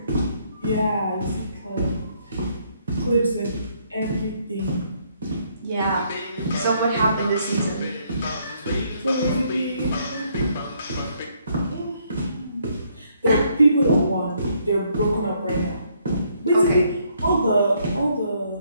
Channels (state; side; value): inverted; both; correlation -0.70